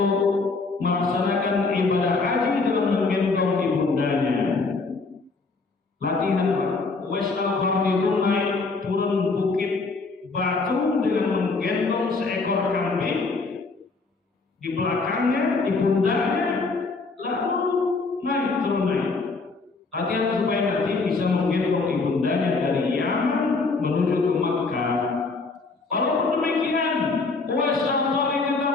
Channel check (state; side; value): quieter; right; 4.0 dB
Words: melaksanakan ibadah haji dengan menggendong ibundanya. Latihan wes al-Qarnidun naik turun bukit batu dengan menggendong seekor kambing di belakangnya, di pundaknya, lalu naik turun naik. Latihan supaya nanti bisa menggendong ibundanya dari Yaman menuju ke Makkah. Walaupun demikian, Uwais al-Qarni